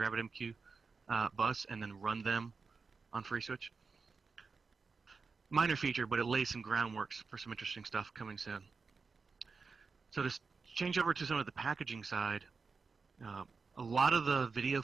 RabbitMQ bus and then run them on FreeSWITCH. Minor feature, but it lays some groundwork for some interesting stuff coming soon. So to change over to some of the packaging side, a lot of the video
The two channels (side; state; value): left; quieter; 4.7 dB